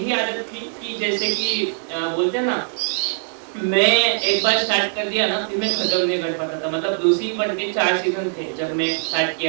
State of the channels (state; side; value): silent; left; 64 dB below the other